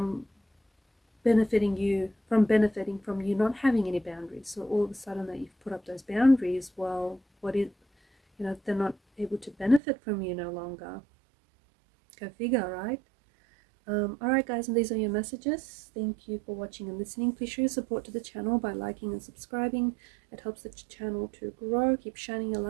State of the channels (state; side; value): drops out; left; at 9.8 s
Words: benefiting from you not having any boundaries. So all of a sudden that you've put up those boundaries, well, they're not able to benefit from you no longer. Go figure, right? Alright guys, and these are your messages. Thank you for watching and listening. Please show your support to the channel by liking and subscribing. It helps the channel to grow. Keep shining a